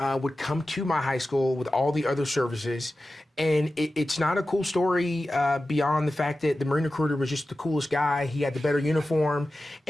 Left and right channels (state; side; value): normal; both; correlation 0.94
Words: would come to my high school with all the other services, and it's not a cool story beyond the fact that the Marine recruiter was just the coolest guy. He had the better uniform,